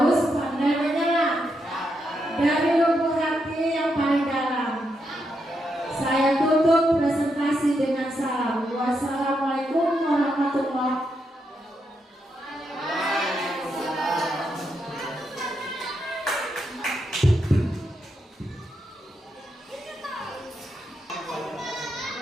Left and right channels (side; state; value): both; normal; correlation 0.82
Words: pandai menyelam dari lubuk hati yang paling dalam. Saya tutup presentasi dengan salam. Wassalamualaikum warahmatullahi wabarakatuh.